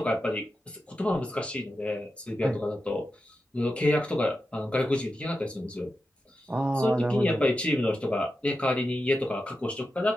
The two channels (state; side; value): normal; both; correlation 0.90